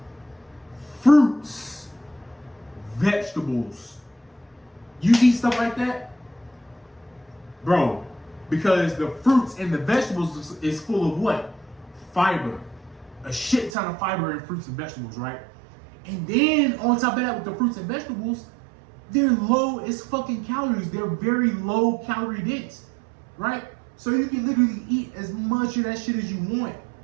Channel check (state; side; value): drops out; left; at 13.7 s